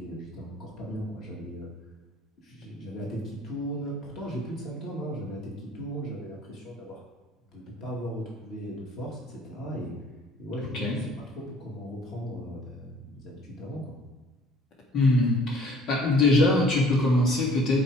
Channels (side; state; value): both; normal; correlation 0.55